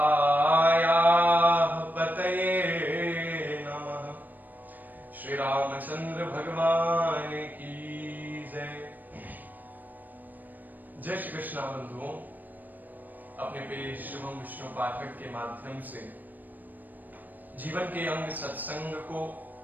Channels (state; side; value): late; left; 0.086 ms